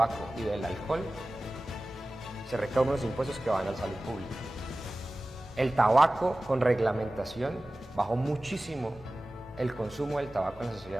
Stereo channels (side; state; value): both; normal; correlation 0.96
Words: y del alcohol, se recaudan unos impuestos que van a la salud pública. El tabaco, con reglamentación, bajó muchísimo el consumo del tabaco en la